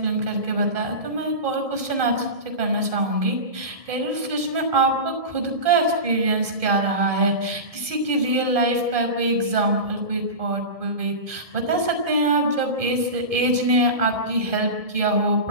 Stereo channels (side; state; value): left; late; 1.7 ms